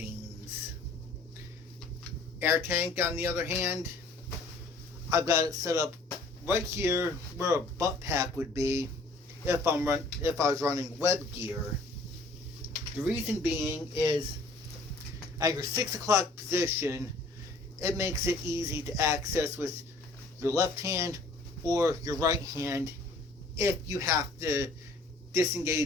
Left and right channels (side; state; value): right; quieter; 3.1 dB